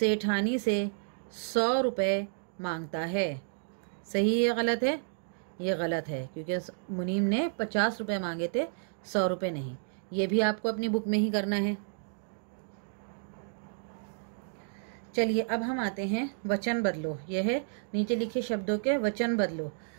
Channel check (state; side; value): silent; left; digital silence